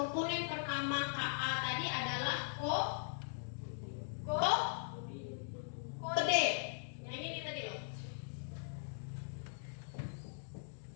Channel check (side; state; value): right; silent; digital silence